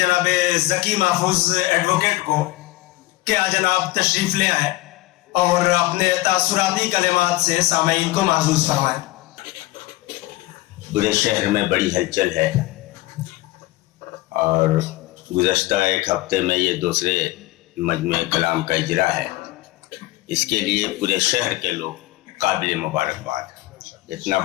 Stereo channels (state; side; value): quieter; right; 18.7 dB